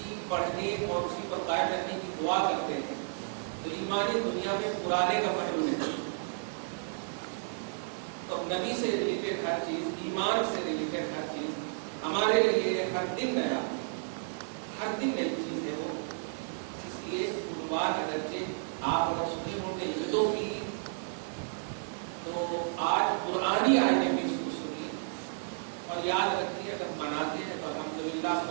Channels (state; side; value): silent; left; 56 dB below the other